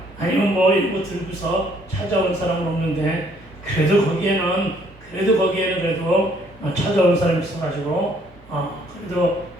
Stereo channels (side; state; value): both; normal; correlation 0.64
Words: 아니면 뭐 이거 들고서 찾아온 사람은 없는데 그래도 거기에는 그래도 찾아온 사람이 있어가지고 그래도